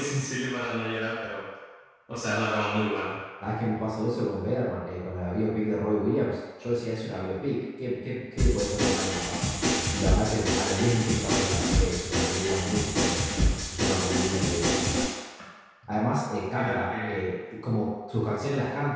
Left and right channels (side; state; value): both; identical; correlation 1.00